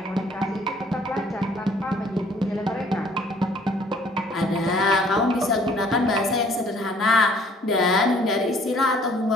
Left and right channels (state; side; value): normal; both; correlation 0.58